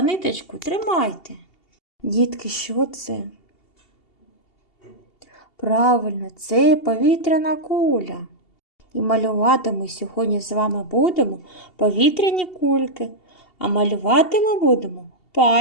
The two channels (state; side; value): late; right; 2.7 ms